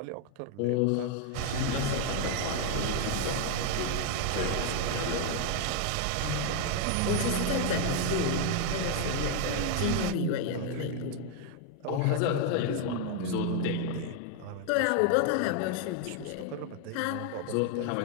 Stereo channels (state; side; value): different; both; correlation 0.00